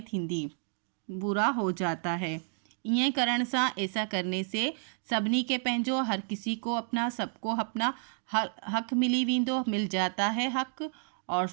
थींदी, पूरा हो जाता है। ईअं करण सां ऐसा करने से सभिनी के पंहिंजो, हर किसी को अपना, सबको अपना हक़ मिली वेंदो, मिल जाता है हक़ और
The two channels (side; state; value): left; silent; 57 dB below the other